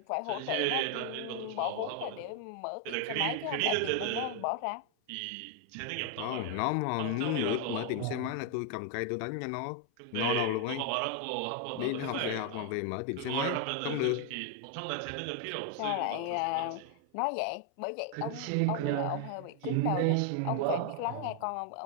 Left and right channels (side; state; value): both; different; correlation 0.00